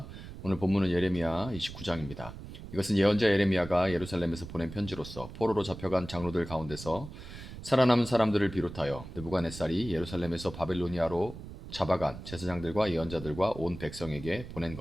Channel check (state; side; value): noise; right; rumble, 12 dB below the sound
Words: 오늘 본문은 예레미야 29장입니다. 이것은 예언자 예레미야가 예루살렘에서 보낸 편지로서 포로로 잡혀간 장로들 가운데서 살아남은 사람들을 비롯하여 느부갓네살이 예루살렘에서 바빌로니아로 잡아간 제사장들과 예언자들과 온 백성에게 보낸